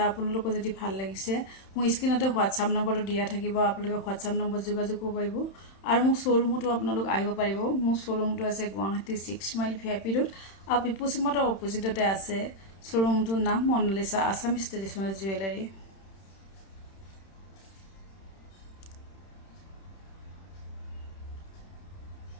আপোনালোকক যদি ভাল লাগিছে মোৰ স্ক্ৰিনতে হোৱাটছআপ নম্বৰটো দিয়া থাকিব। আপোনালোকে হোৱাটছআপ নম্বৰ যোগাযোগ কৰিব পাৰিব আৰু মোৰ শ্বৰুমতো আপোনালোক আহিব পাৰিব। মোৰ শ্বৰুমটো আছে গুৱাহাটী 6 মাইল ভিআইপি ৰোড আৰু পিপুলছ মটৰ অপজিটতে আছে। শ্বৰুমটোৰ নাম মনালিসা আছামিজ ট্ৰেডিশ্যনেল জুৱেলাৰী।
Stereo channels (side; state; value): right; late; 31 ms